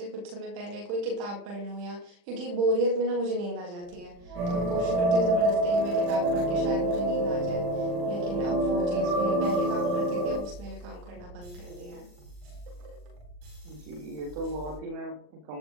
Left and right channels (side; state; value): left; late; 40 ms